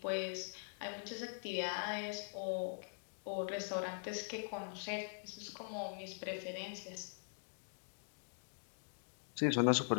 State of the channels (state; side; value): silent; right; digital silence